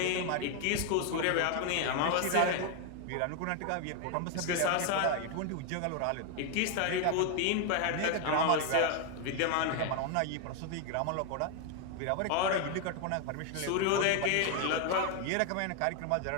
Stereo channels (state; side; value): different; both; correlation 0.01